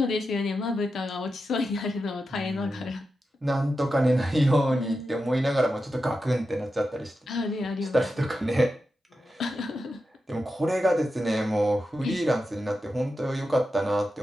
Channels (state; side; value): normal; both; correlation 0.90